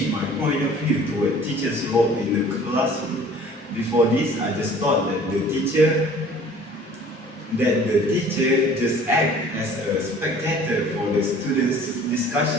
my point of view toward teacher's role in the classroom. Before this, I just thought that the teacher just act as a spectator for the students'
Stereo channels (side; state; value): both; normal; correlation 0.50